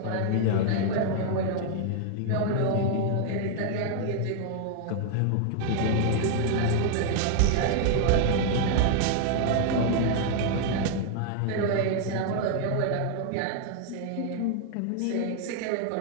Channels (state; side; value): different; both; correlation 0.00